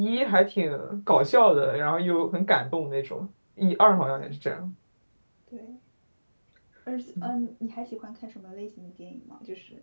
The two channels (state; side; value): inverted; both; correlation -1.00